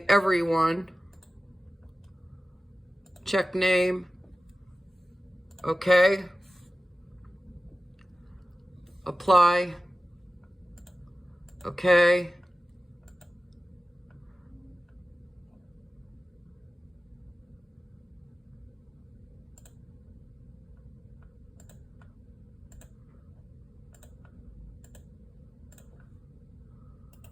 everyone. Check name. Okay. Apply. Okay.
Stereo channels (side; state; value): both; normal; correlation 0.95